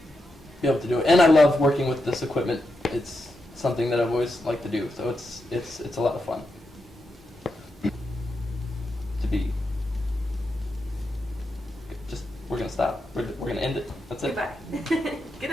able to do it. And I love working with this equipment. It's something that I've always liked to do, so it's a lot of fun to be. Just, we're gonna stop. We're gonna end it. That's it. Goodbye. Good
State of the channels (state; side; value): normal; both; correlation 0.86